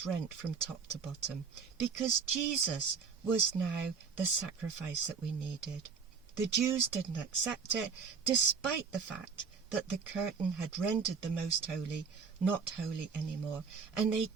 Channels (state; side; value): quieter; left; 5.8 dB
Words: rent from top to bottom, because Jesus was now the sacrifice that we needed. The Jews didn't accept it, despite the fact that the curtain had rendered the most holy not holy anymore, and they